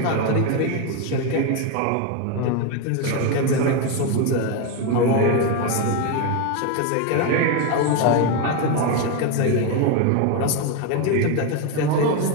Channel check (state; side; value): different; both; correlation 0.02